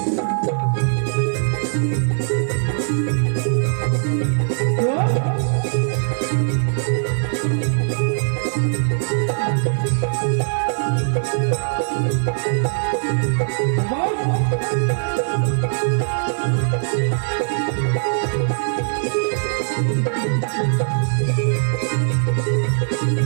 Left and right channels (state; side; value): silent; left; 57 dB below the other